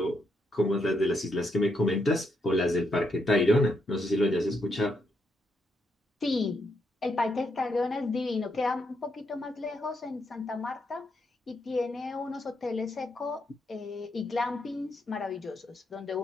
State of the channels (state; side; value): normal; both; correlation 0.79